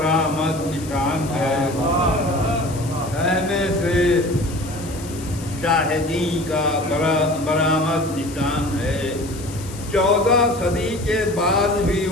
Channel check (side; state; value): left; noise; hiss, 16 dB below the sound